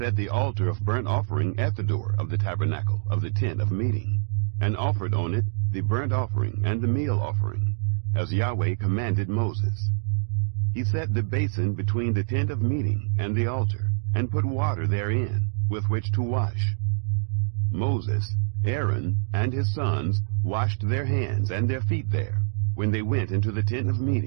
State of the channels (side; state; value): left; silent; digital silence